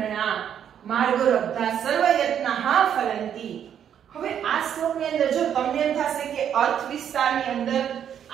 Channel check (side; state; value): left; quieter; 9.1 dB